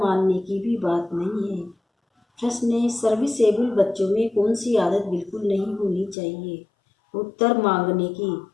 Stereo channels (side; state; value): right; drops out; at 6.2 s